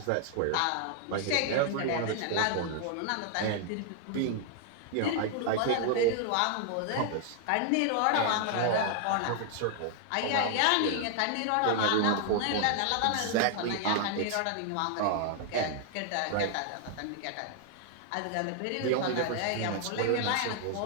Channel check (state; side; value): different; both; correlation 0.00